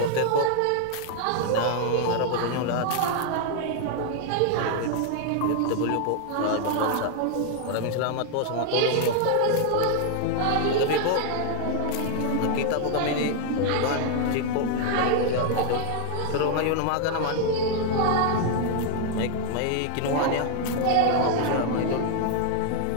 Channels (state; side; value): different; both; correlation 0.00